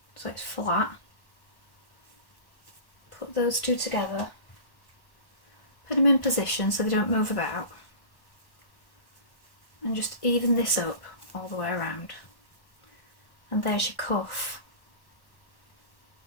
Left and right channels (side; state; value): right; late; 1.1 ms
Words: so it's flat. Put those two together. Put them in position so they don't move about. And just even this up all the way around. And there's your cuff.